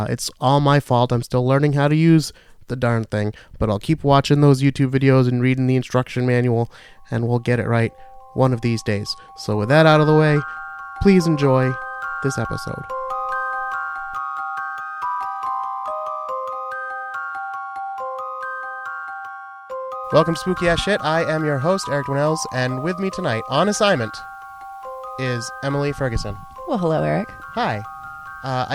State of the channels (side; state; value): both; identical; correlation 1.00